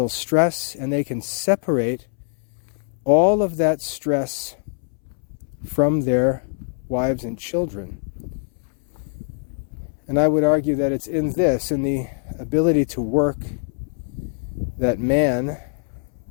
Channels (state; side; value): silent; right; 63 dB below the other